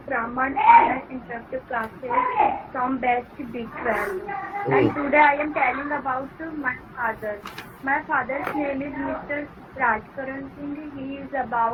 Raman Online Interactive Classes from Batch B12. And today I am telling about my father. My father's name is Mr. Rajkaran Singh. He is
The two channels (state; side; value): identical; both; correlation 1.00